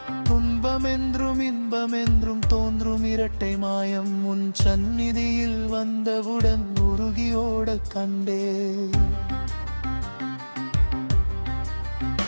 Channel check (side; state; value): both; inverted; correlation -1.00